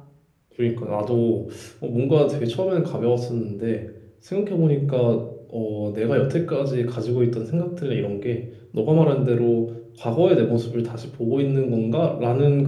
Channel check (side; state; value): both; identical; correlation 1.00